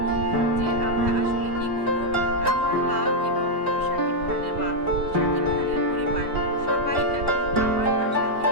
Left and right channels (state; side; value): late; left; 3.1 ms